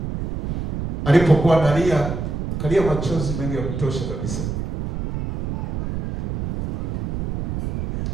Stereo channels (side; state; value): right; noise; rumble, 5 dB below the sound